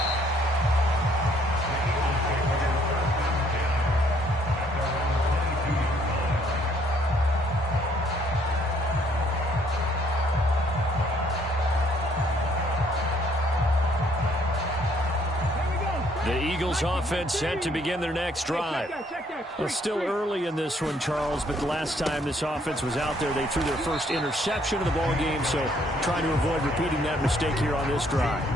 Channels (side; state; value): both; normal; correlation 0.65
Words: The Eagles offense set to begin their next drive. Well, still early in this one, Charles, but the last time this offense was out there, they threw their first interception of the ball game, so trying to avoid repeating that mistake here on this drive.